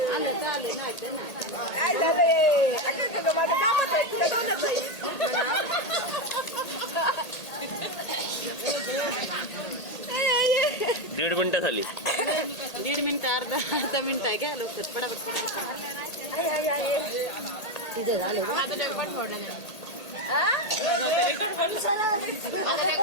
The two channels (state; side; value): late; right; 1.8 ms